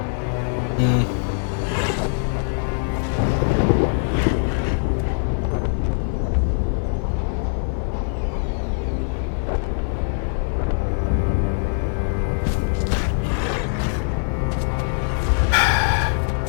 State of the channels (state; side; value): silent; right; digital silence